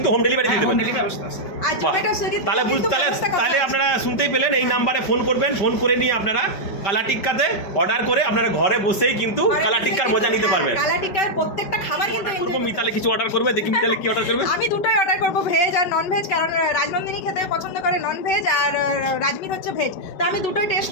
হোম ডেলিভারি দিয়ে দেবেন। তাহলে আপনারা শুনতেই পেলেন, এই নাম্বারে ফোন করবেন, ফোন করে নিয়ে আপনারা কালা টিক্কাতে অর্ডার করে আপনারা ঘরে বসেই কিন্তু কালা টিক্কার মজা নিতে পারবেন। কালা টিক্কার প্রত্যেকটা খাবার কিন্তু মিতালি কিছু অর্ডার করবে, দেখি মিতালি কি অর্ডার করবে। আমি দুটোই অর্ডার করবো, ভেজ আর নন ভেজ, কারণ রাজনন্দিনী খেতে পছন্দ করে নন ভেজ, আর রাজমিত হচ্ছে ভেজ। তো আমি দুটোই টেস্ট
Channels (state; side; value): late; right; 5.2 ms